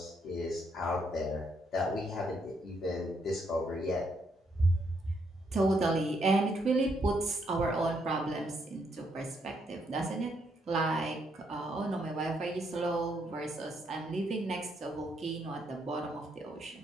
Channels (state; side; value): normal; both; correlation 0.75